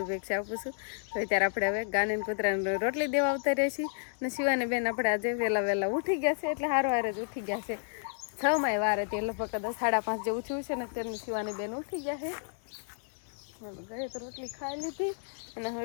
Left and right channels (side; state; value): right; silent; digital silence